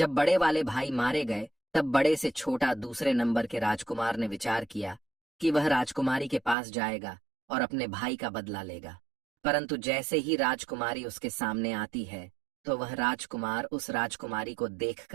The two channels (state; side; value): drops out; left; at 6.6 s